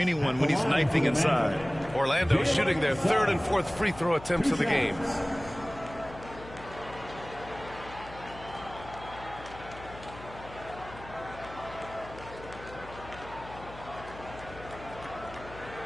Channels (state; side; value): noise; left; hum, 16 dB below the sound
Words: when he's knifing inside. Orlando shooting their 3rd and 4th free throw attempts of the game.